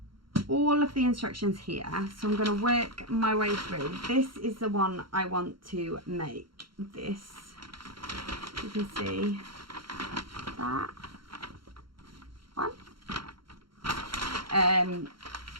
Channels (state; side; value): late; left; 0.73 ms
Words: all of the instructions here, so I'm going to work my way through. This is the one I want to make. This, you can see that one.